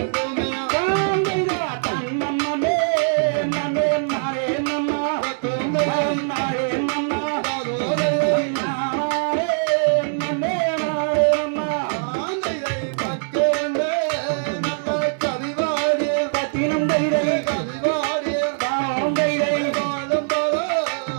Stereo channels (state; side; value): silent; left; digital silence